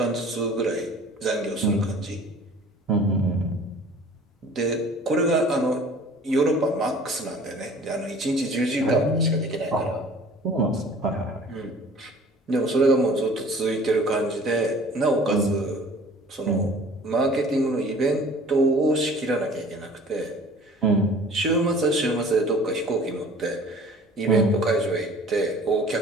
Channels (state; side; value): normal; both; correlation 0.48